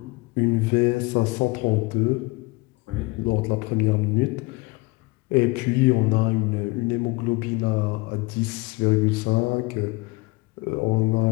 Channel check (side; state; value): right; quieter; 24.5 dB